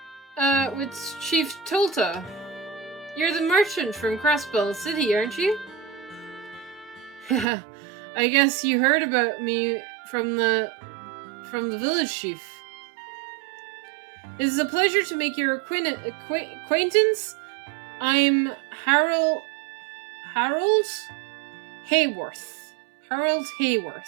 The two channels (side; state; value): left; drops out; at 7.5 s